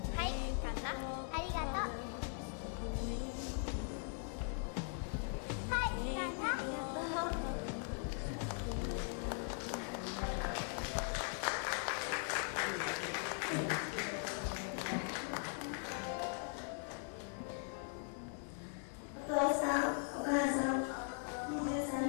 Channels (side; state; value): right; silent; 51 dB below the other